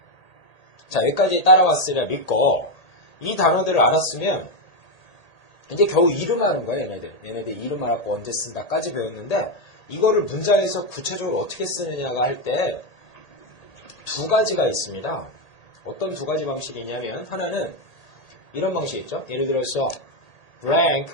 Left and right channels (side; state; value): right; late; 1.8 ms